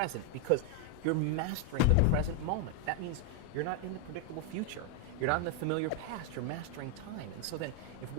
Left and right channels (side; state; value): both; different; correlation 0.01